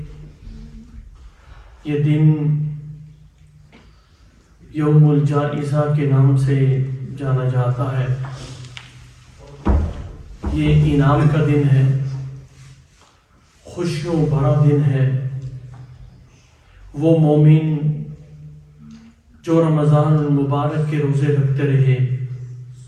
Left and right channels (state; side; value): identical; both; correlation 1.00